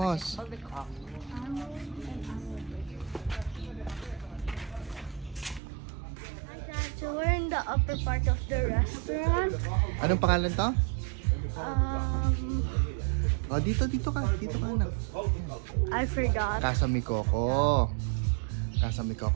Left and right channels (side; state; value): left; drops out; at 5.6 s